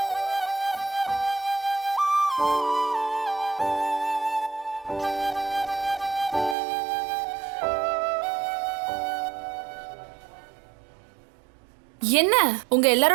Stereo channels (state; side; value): drops out; left; at 6.6 s